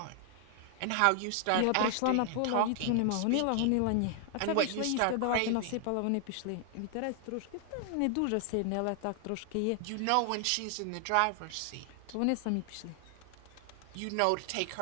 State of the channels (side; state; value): both; different; correlation 0.00